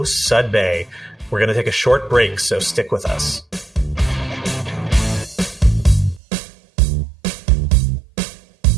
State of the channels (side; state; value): left; drops out; at 6.2 s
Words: Sudbay. We're going to take a short break, so stick with us.